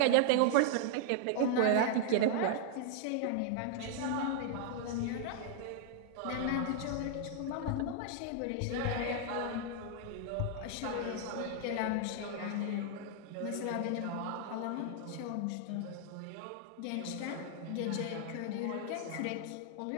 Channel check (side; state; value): both; different; correlation 0.00